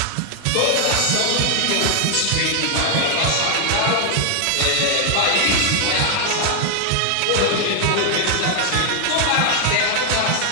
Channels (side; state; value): both; different; correlation 0.00